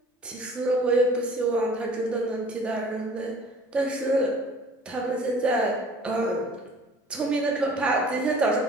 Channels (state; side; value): normal; both; correlation 0.49